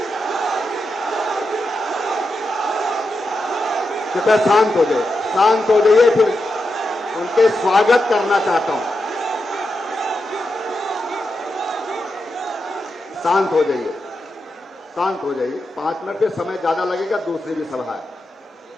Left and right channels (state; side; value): normal; both; correlation 0.87